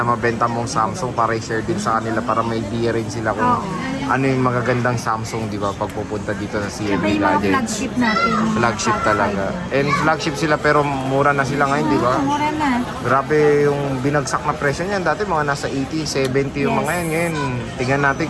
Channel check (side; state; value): both; identical; correlation 1.00